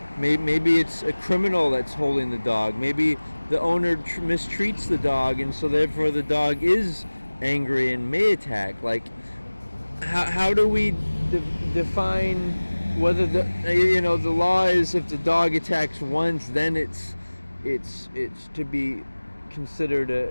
maybe it's a criminal that's holding the dog. Maybe the owner mistreats the dog, and so therefore the dog is angry and may attack. Like, how do we define whether the law is if the dog attacks once, then it's to be considered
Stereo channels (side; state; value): both; inverted; correlation -1.00